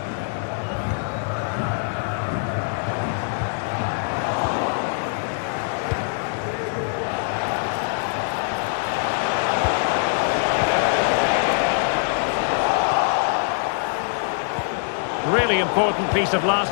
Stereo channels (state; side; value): silent; right; digital silence